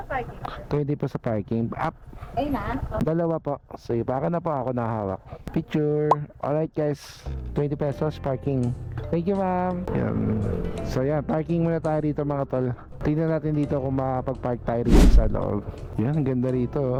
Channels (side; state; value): both; identical; correlation 1.00